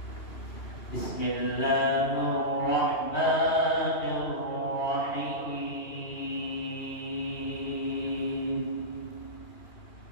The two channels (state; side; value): late; right; 2.8 ms